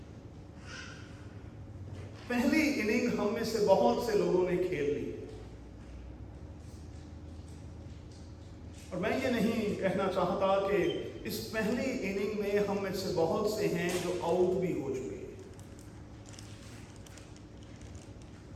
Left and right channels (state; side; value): identical; both; correlation 1.00